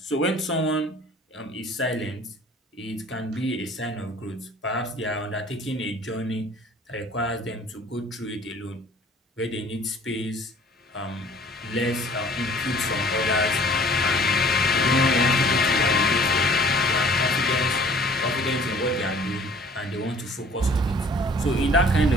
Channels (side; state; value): both; normal; correlation 0.52